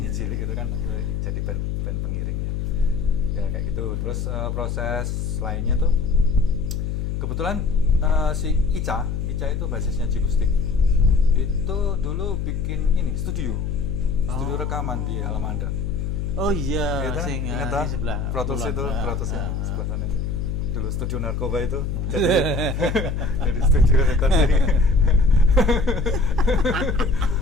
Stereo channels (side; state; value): left; noise; hum, 2 dB below the sound